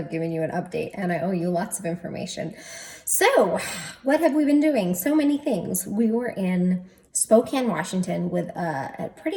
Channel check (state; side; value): identical; both; correlation 1.00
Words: given you an update, and I owe you lots of information. So, what have we been doing? So many things. We were in Spokane, Washington, with a